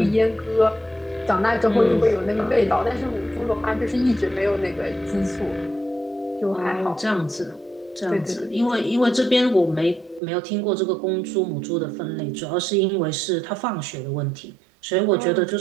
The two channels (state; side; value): drops out; left; at 10.2 s